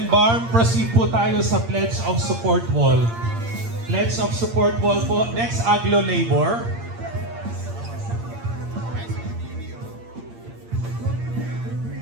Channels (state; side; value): late; left; 8.7 ms